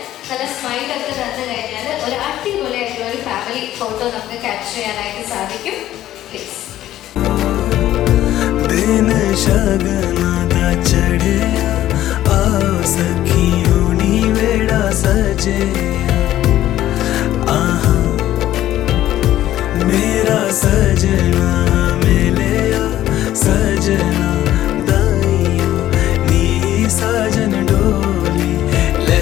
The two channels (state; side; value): quieter; right; 13.3 dB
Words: നല്ല സ്മൈലൊക്കെ തന്നു കഴിഞ്ഞാൽ ഒരു അടിപൊളിയായിട്ടുള്ള ഒരു ഫാമിലി ഫോട്ടോ നമുക്ക് ക്യാപ്ചർ ചെയ്യാനായിട്ട് സാധിക്കും. പ്ലീസ്. मेरा सजना मिले सजना दाइयों नी